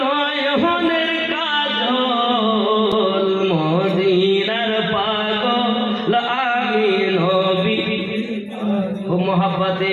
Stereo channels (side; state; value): both; identical; correlation 1.00